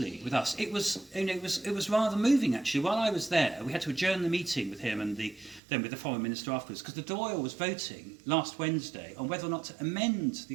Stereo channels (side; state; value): left; drops out; at 5.6 s